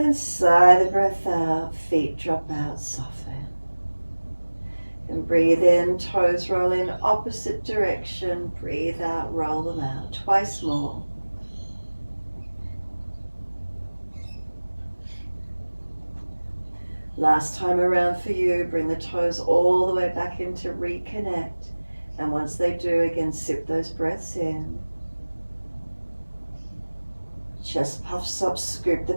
sigh the breath out, feet drop out, soften. And breathe in, toes roll in opposite direction. Breathe out, roll them out. Twice more. Last time around for you, bring the toes all the way back in to reconnect. And once they do, again, sip those breaths in. Chest puffs up, scoop the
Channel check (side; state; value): both; inverted; correlation -1.00